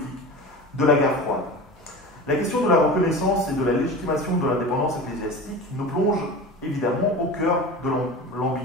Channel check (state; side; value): normal; both; correlation 0.32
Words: de la guerre froide. La question de la reconnaissance et de la légitimation de l'indépendance ecclésiastique nous plonge évidemment au cœur de